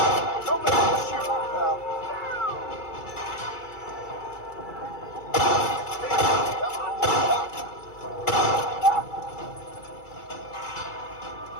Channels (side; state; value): right; late; 2.3 ms